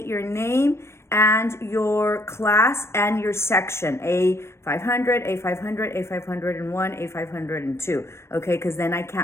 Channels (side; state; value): right; late; 0.13 ms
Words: your name and your class and your section, A500, A500, A501, A502, okay, because then I